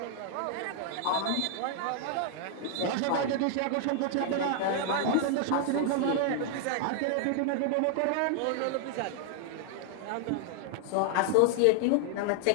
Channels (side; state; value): both; different; correlation 0.00